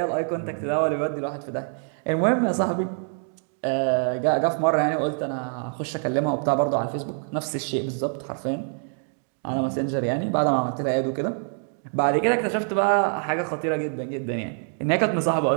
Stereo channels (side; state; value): left; silent; 56 dB below the other